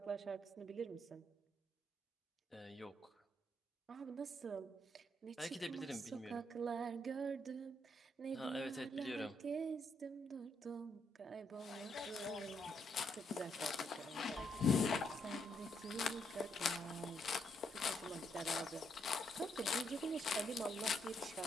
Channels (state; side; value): normal; both; correlation 0.75